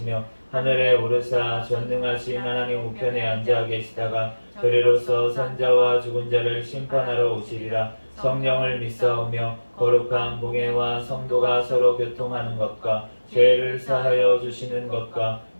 하늘에 오르사 전능하신 하나님 우편에 앉아 계시다가 저리로서 산자와 죽은 자를 심판하러 오시리라. 성령을 믿사오며 거룩한 공예와 성도가 서로 교통하는 것과 죄를 사하여 주시는 것과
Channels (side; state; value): both; inverted; correlation -1.00